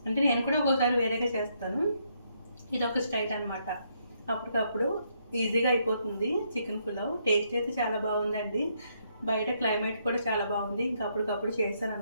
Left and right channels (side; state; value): both; inverted; correlation -0.74